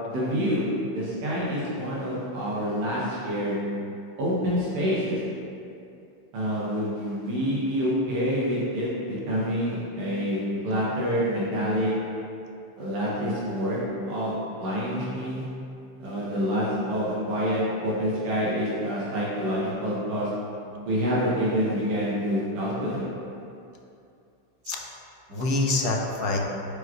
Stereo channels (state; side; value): late; left; 16 ms